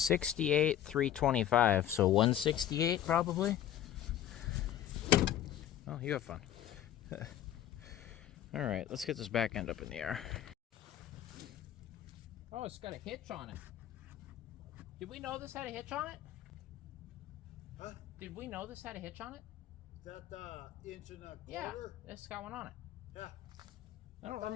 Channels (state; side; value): quieter; right; 11.2 dB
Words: 68, 325, so 168 probably. Oh, you have fun. All right, let's get this back end up in the air. Oh, it's got a hitch on it. Did we know this had a hitch on it? Huh? Did we know this had a hitch on it? Is that the inch and a quarter? Yeah, it's got one on it. Yeah. I don't